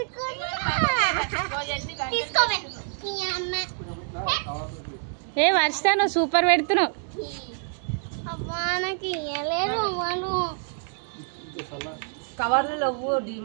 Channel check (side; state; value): left; silent; 60 dB below the other